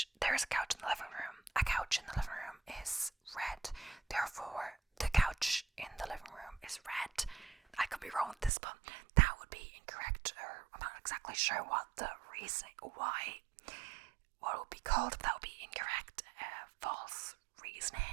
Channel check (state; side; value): drops out; left; at 8.5 s